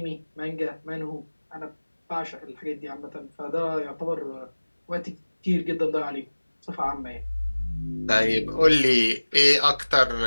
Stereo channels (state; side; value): inverted; both; correlation -1.00